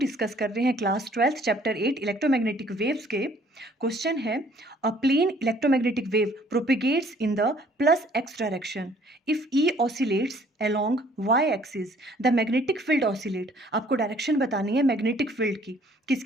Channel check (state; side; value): normal; both; correlation 0.59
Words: कर रहे हैं क्लास 12 चैप्टर 8 इलेक्ट्रोमैग्नेटिक वेव्स के। क्वेश्चन है a plane electromagnetic wave propagates in the plus X direction if E oscillates along Y axis the magnetic field oscillate. आपको direction बतानी है magnetic field की, किस